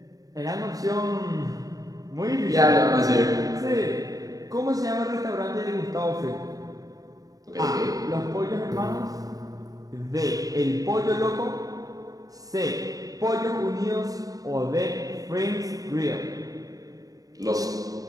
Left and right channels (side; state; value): left; late; 0.18 ms